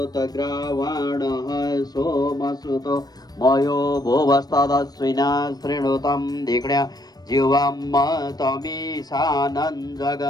सोमसुतो मयो भुवस्तदश्विना शृणुतं धिक्ण्या जीवं तमीशानं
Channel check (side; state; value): right; late; 0.19 ms